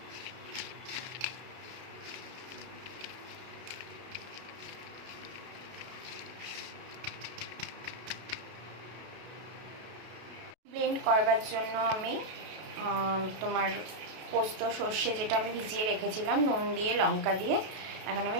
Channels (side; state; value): left; late; 32 ms